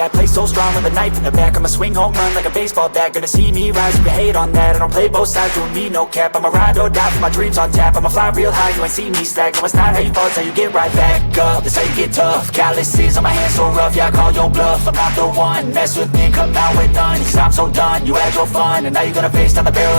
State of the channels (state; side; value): inverted; both; correlation -1.00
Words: I play so strong with a knife in the back. I'ma swing home run like a baseball bat. Gonna see me rise, you can hate on that. I don't play both sides, doing me no cap. I'ma ride or die for my dreams on tap. I'ma fly real high, you ain't see me slack. No, it's not how you fall, it's how you get right back up. That's how you get tough. Calluses on my hands so rough, yeah, I call your bluff. I'm not the one, mess with me and come out with none. Cause I'm so done, you had your fun. And now you're gonna face down the barrel